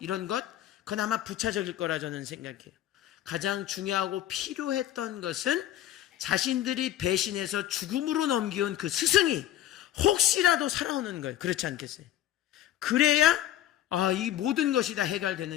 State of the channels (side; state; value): right; quieter; 12.4 dB